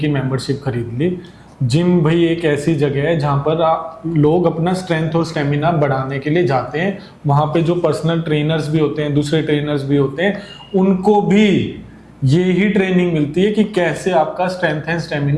मेंबरशिप खरीद ली। जिम भाई एक ऐसी जगह है जहाँ पर लोग अपना स्ट्रेंथ और स्टेमिना बढ़ाने के लिए जाते हैं। वहाँ पे जो पर्सनल ट्रेनर्स भी होते हैं, दूसरे ट्रेनर्स भी होते हैं, उनको भी ये ही ट्रेनिंग मिलती है कि कैसे आपका स्ट्रेंथ एंड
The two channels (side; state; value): both; identical; correlation 1.00